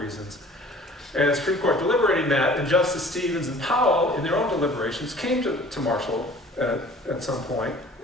And the Supreme Court deliberating that, and Justice Stevens and Powell, in their own deliberations, came to Marshall at some point,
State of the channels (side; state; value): both; normal; correlation 0.49